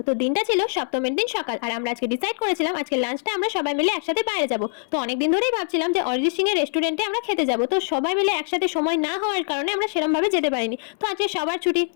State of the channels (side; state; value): right; silent; 60 dB below the other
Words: তো দিনটা ছিল সপ্তমীর দিন সকাল, আর আমরা আজকে ডিসাইড করেছিলাম আজকে লাঞ্চটা আমরা সবাই মিলে একসাথে বাইরে যাব। তো অনেকদিন ধরেই ভাবছিলাম যে অরিজিৎ সিং এর রেস্টুরেন্টে আমরা খেতে যাব। তো সবাই মিলে একসাথে সময় না হওয়ার কারণে আমরা সেরকম ভাবে যেতে পারিনি। তো আজকে সবার ছুটি,